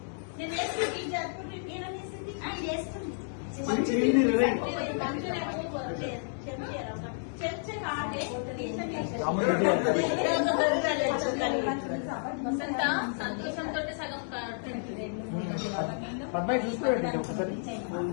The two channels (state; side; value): silent; right; digital silence